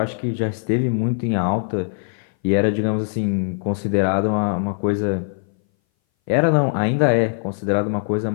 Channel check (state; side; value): silent; right; 60 dB below the other